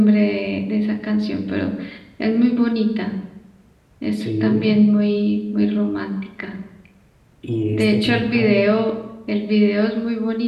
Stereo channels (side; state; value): both; identical; correlation 1.00